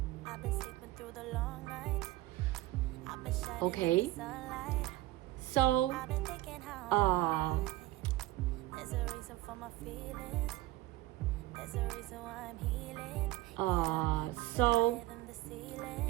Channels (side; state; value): left; quieter; 17.1 dB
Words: I've been sleeping through the long nights. I've been shining in the sunlight. So, I've been thinking how there's a reason for my feelings. There's a reason why I'm healing. So